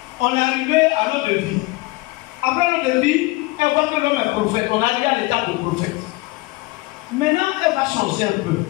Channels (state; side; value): quieter; right; 22.7 dB